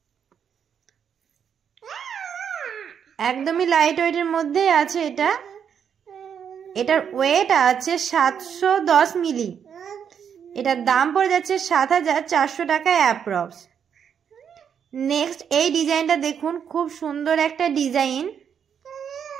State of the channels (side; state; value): left; quieter; 7.8 dB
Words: একদমই লাইট ওয়েটের মধ্যে আছে। এটার ওয়েট আছে 710 মিলি। এটার দাম পড়ে যাচ্ছে 7,400 টাকা অ্যাপ্রক্স। নেক্সট এই ডিজাইনটা দেখুন, খুব সুন্দর একটা ডিজাইন।